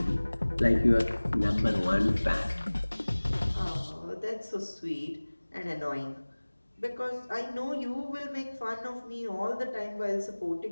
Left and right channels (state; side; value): inverted; both; correlation -1.00